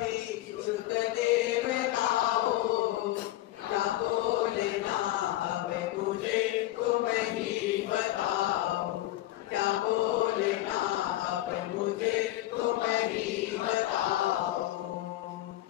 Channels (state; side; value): quieter; right; 15.5 dB